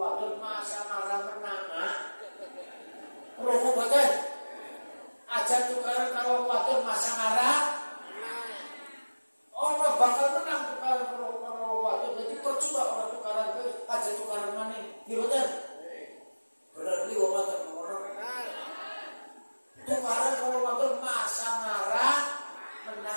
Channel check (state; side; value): inverted; both; correlation -1.00